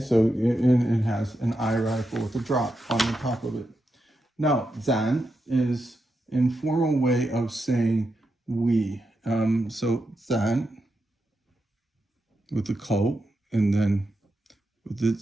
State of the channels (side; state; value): both; normal; correlation 0.86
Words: it has an eye radical with a drop on the top of it. Now, zan is informal way of saying we. So zan with the ko, and then with the